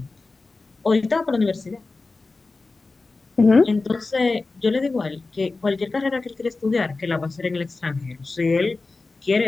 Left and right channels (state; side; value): quieter; right; 3.6 dB